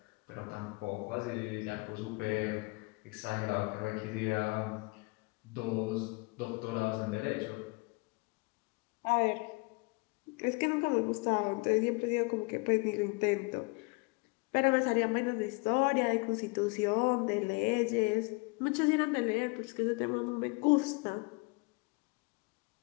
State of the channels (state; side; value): quieter; right; 29.3 dB